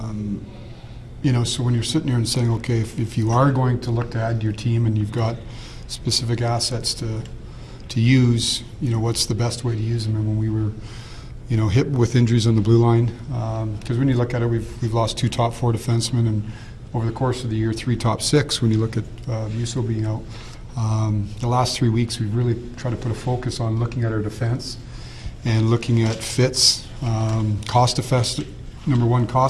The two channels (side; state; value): both; identical; correlation 1.00